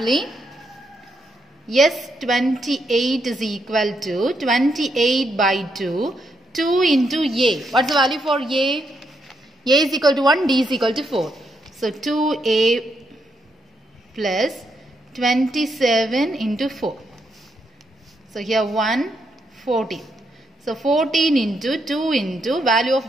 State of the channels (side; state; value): both; normal; correlation 0.79